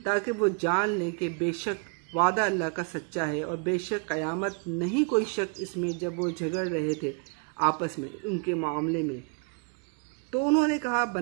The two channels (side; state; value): left; quieter; 36.9 dB